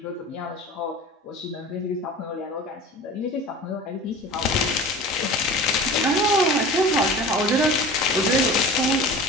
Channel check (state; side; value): normal; both; correlation 0.38